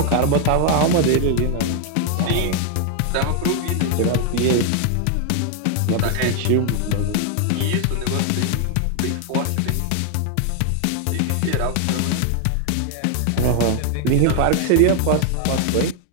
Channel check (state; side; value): different; both; correlation 0.00